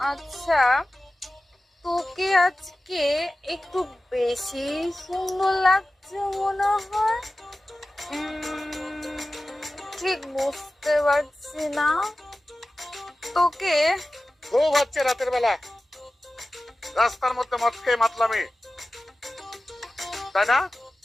আচ্ছা, তোকে আজকে একটু বেশি সুন্দর লাগছে মনে হয়। ঠিক বুঝতে পারছি না তোকে। খুব হচ্ছে রাতের বেলা রাস্তার মধ্যে মদ খেয়ে মাতলামি, তাই না?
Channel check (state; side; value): normal; both; correlation 0.95